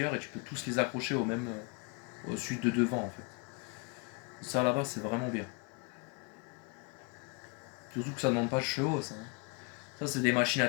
et tu peux tous les accrocher au même, au suite de devant en fait. Ça là-bas, c'est vraiment bien. Surtout que ça ne demande pas de chevaux, ça, hein. Ça, c'est des machines à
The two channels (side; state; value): right; quieter; 31.7 dB